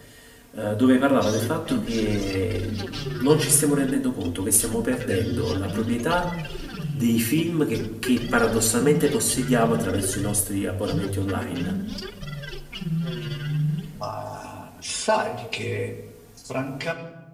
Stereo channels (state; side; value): identical; both; correlation 1.00